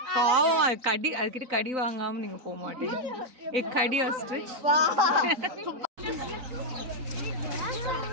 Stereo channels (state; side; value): late; left; 3.9 ms